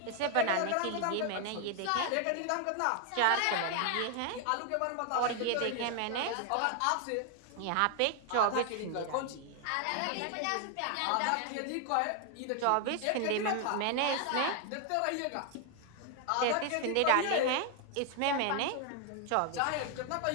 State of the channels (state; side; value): different; both; correlation 0.00